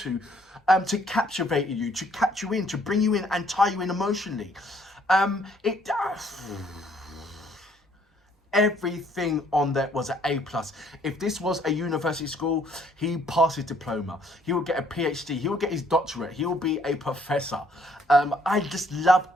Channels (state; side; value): normal; both; correlation 0.65